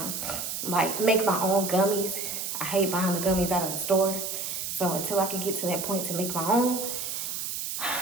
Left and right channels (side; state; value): right; noise; hiss, 4 dB below the sound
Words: like, make my own gummies. I hate buying the gummies out of the store. So until I can get to that point to make my own,